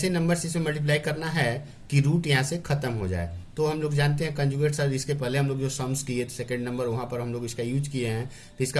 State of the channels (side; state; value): both; identical; correlation 1.00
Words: नंबर से इसे मल्टीप्लाई करना है कि रूट यहाँ से खत्म हो जाए। तो हम लोग जानते हैं कंजुगेट सर, इसके पहले हम लोग जो सम्स किए सेकंड नंबर, वहाँ पर हम लोग इसका यूज किए हैं। तो इसका